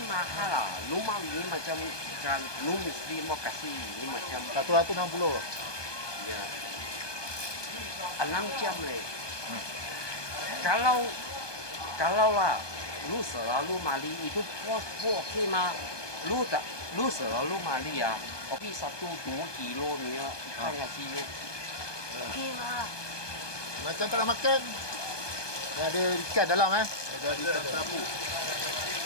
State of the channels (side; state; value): right; late; 1.2 ms